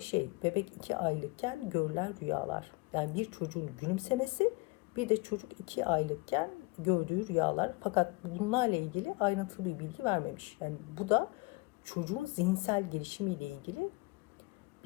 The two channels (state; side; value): quieter; right; 25.1 dB